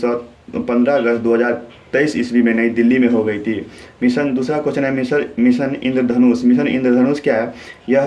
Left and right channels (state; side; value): identical; both; correlation 1.00